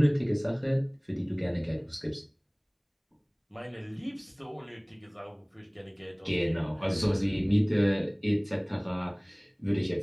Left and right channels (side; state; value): both; identical; correlation 1.00